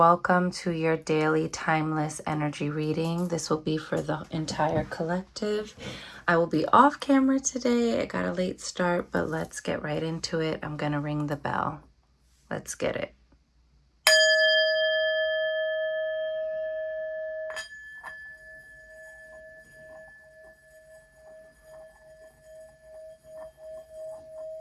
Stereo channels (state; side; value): identical; both; correlation 1.00